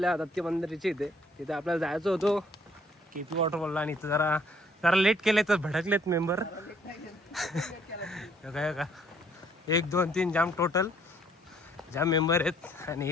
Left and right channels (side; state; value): both; normal; correlation 0.63